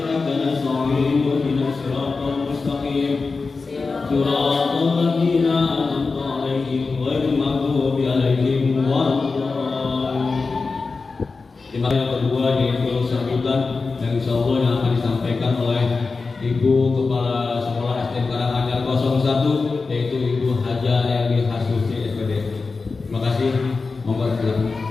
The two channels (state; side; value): quieter; right; 4.2 dB